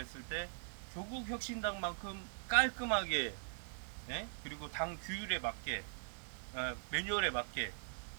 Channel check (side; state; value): left; silent; digital silence